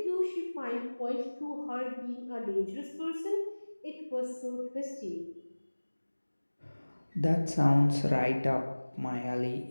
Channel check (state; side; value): inverted; both; correlation -1.00